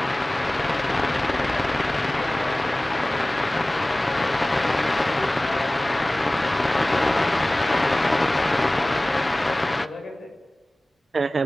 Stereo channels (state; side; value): normal; both; correlation 0.98